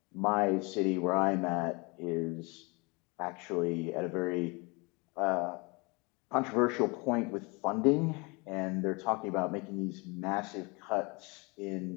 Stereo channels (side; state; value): right; quieter; 28.2 dB